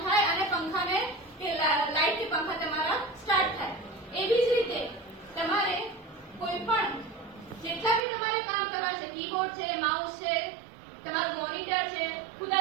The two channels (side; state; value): left; drops out; at 8.0 s